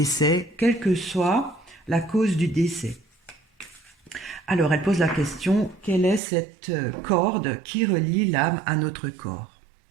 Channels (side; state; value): left; drops out; at 6.2 s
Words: quelle que soit la cause du décès. Alors elle pose la question, quelle est cette corde qui relie l'âme à notre corps?